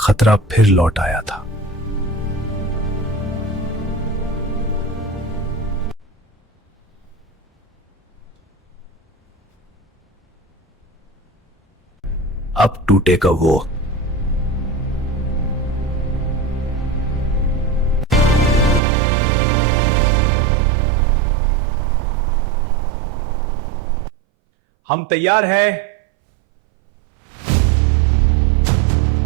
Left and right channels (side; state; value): left; drops out; at 18.8 s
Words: फिर लौट आया था। अब टूटेगा वो। हम तैयार है।